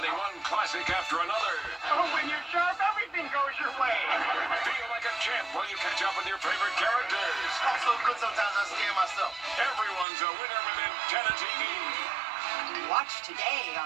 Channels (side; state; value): left; drops out; at 10.1 s